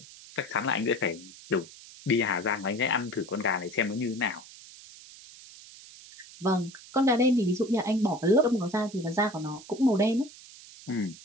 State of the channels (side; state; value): right; noise; hiss, 19 dB below the sound